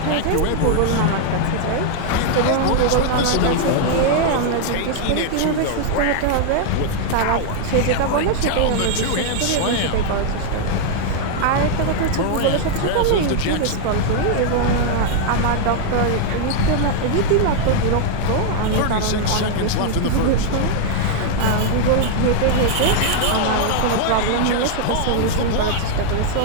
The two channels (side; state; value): both; different; correlation 0.00